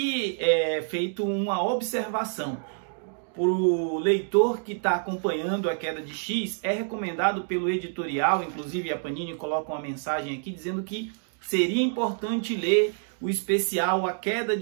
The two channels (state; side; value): silent; left; digital silence